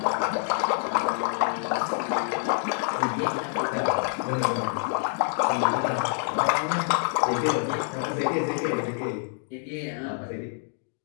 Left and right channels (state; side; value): silent; right; 60 dB below the other